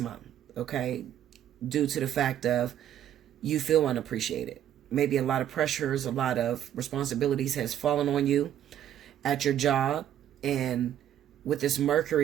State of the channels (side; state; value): left; quieter; 10.9 dB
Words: okay, due to the fact of you feel unappreciated. Maybe a lot of pressures, a lot of responsibilities has fallen on you at your job. And with this